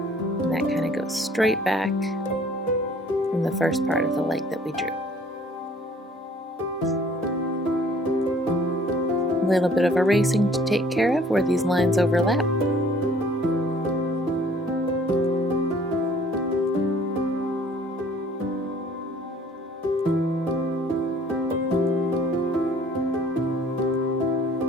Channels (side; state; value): both; normal; correlation 0.55